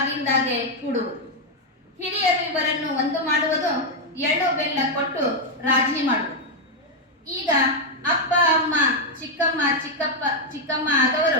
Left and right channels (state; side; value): normal; both; correlation 0.01